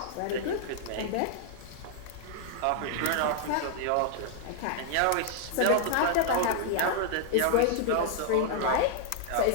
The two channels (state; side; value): different; both; correlation 0.00